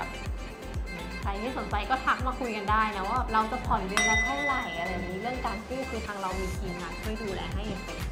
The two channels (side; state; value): both; identical; correlation 1.00